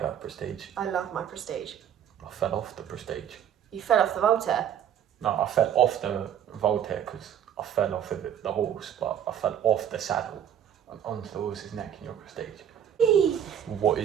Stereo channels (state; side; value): quieter; left; 9.6 dB